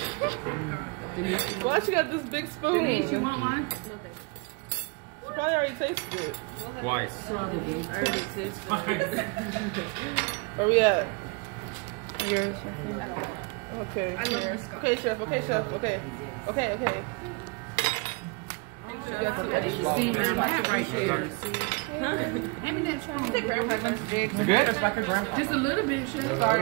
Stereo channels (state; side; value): quieter; left; 29.3 dB